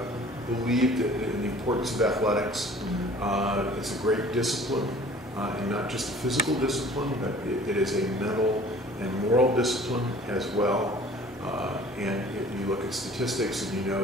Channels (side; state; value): both; normal; correlation 0.49